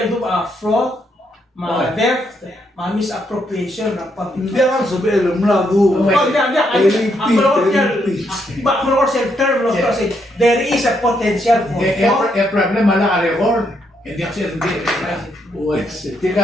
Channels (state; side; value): normal; both; correlation 0.76